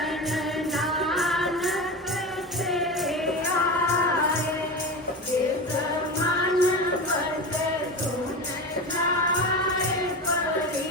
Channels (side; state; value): both; normal; correlation 0.25